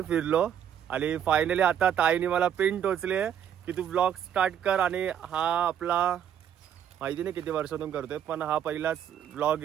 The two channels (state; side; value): quieter; left; 9.4 dB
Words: फिरलो. आणि फायनली आता ताईने मला पिन टोचली आहे की तू ब्लॉग स्टार्ट कर. आणि हा आपला माहिती नाही किती वर्षातून करतोय, पण हा पहिलाच ब्लॉग